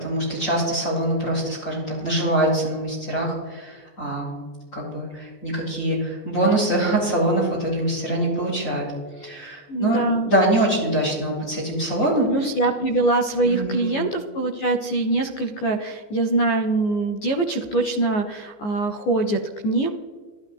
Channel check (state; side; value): late; right; 14 ms